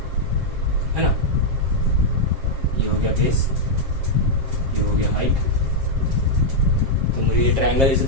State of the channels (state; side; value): late; left; 7.5 ms